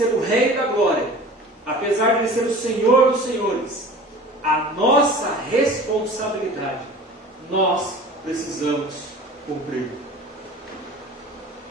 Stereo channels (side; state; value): both; normal; correlation 0.41